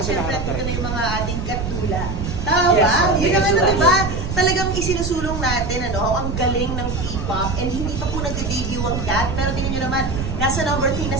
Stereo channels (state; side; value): noise; right; rumble, 4 dB below the sound